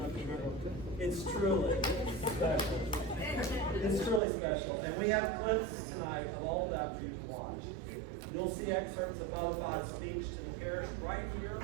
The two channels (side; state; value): left; drops out; at 4.2 s